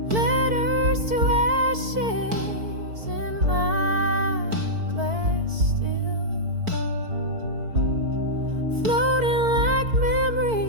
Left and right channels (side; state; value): left; late; 4.5 ms